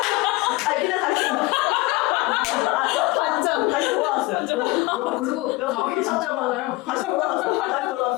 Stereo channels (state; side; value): quieter; right; 21.4 dB